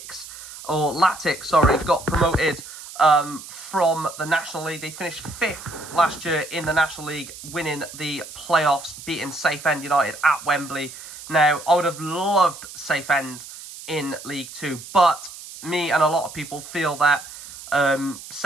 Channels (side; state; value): right; noise; hiss, 14 dB below the sound